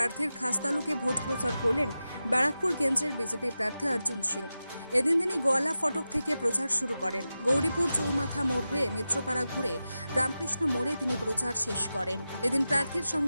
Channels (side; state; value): both; inverted; correlation -0.93